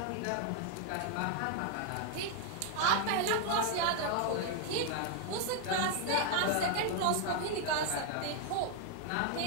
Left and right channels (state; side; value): different; both; correlation 0.00